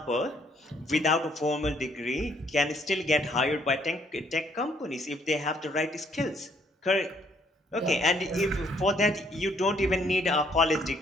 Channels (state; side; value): normal; both; correlation 0.66